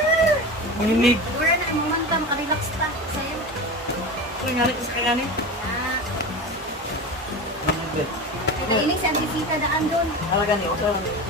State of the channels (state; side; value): normal; both; correlation 0.28